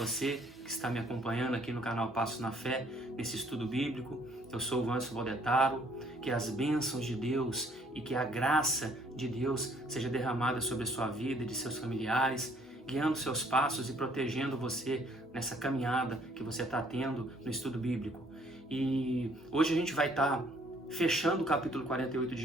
que está me acompanhando aqui no canal Passos na Fé, nesse estudo bíblico. Eu sou o Vancio Valdetaro. Que as bênçãos de Deus e que a graça de Deus seja derramada sobre a sua vida e de seus familiares, guiando seus passos e protegendo você nessa caminhada que você está tendo no estudo bíblico. E hoje a gente vai estar fechando o capítulo 48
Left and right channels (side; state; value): both; normal; correlation 0.62